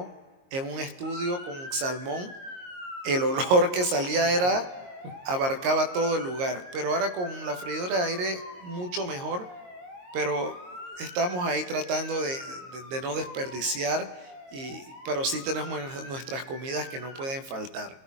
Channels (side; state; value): left; late; 22 ms